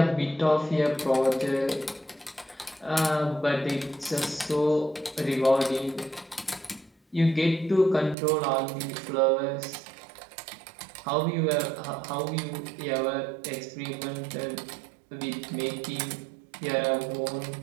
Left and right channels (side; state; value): left; drops out; at 8.2 s